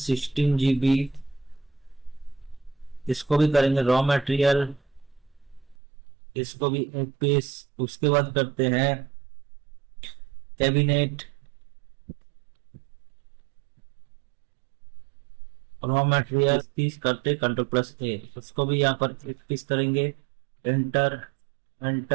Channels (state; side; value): drops out; left; at 5.8 s